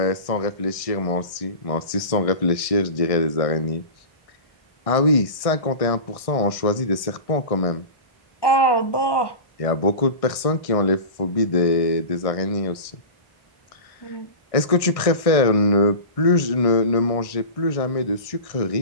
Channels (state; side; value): late; right; 1.6 ms